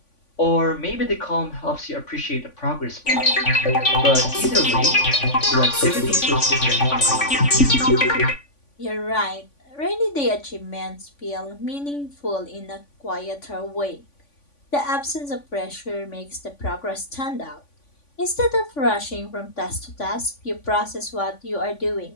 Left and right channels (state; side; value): late; right; 3.5 ms